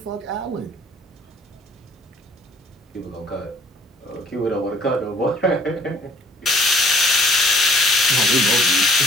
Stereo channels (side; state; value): both; normal; correlation 0.58